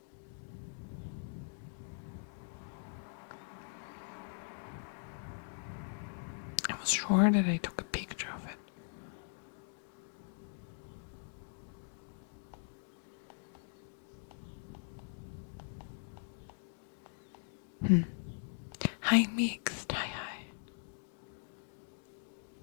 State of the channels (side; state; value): right; silent; digital silence